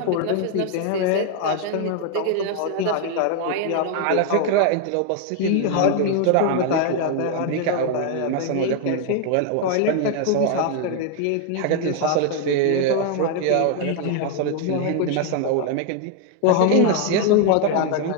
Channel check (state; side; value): different; both; correlation 0.00